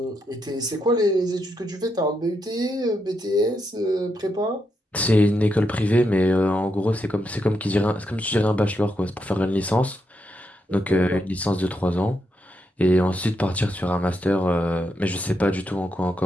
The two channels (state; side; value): normal; both; correlation 0.82